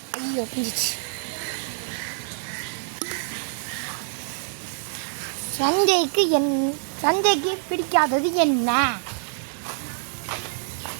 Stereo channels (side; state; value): left; silent; digital silence